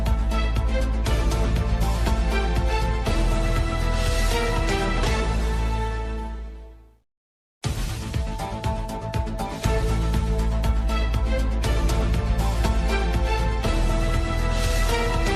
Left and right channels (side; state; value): both; identical; correlation 1.00